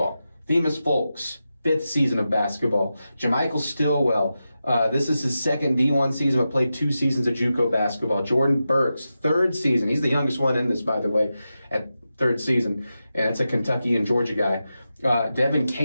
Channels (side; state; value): both; inverted; correlation -0.91